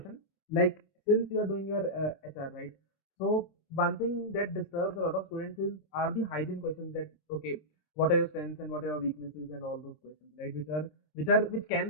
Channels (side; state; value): right; late; 26 ms